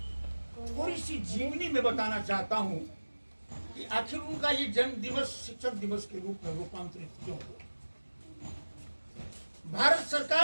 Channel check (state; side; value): inverted; both; correlation -1.00